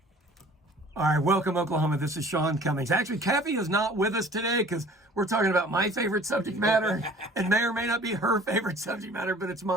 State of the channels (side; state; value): both; normal; correlation 0.49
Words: All right, welcome, Oklahoma. This is Sean Cummings. Actually, Kathy is not with us today because we're talking about my favorite subject matter and may or may not be her favorite subject matter, but it's